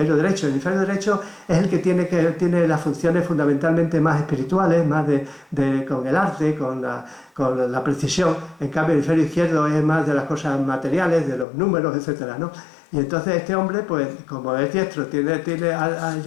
derecho. El hemisferio derecho es el que tiene las funciones fundamentalmente más espirituales, más con el arte, con la precisión. En cambio, el hemisferio izquierdo es más de las cosas materiales, de los números, etcétera, ¿no? Y entonces este hombre, pues como es diestro,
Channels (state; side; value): drops out; right; at 11.5 s